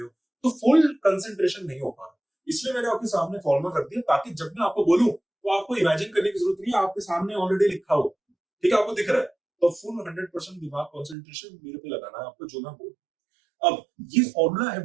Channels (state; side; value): drops out; left; at 11.2 s